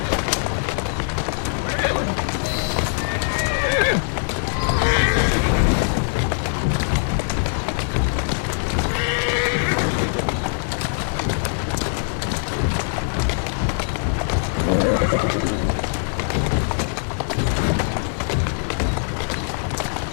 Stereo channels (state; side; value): silent; right; digital silence